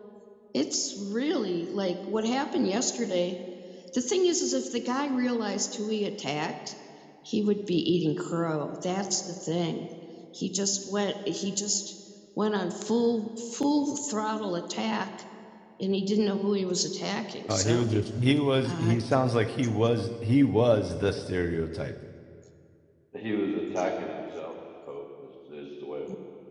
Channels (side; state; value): both; identical; correlation 1.00